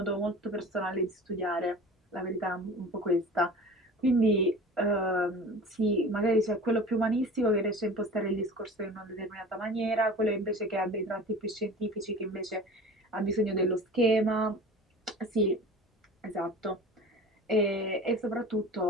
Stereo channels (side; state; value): both; normal; correlation 0.39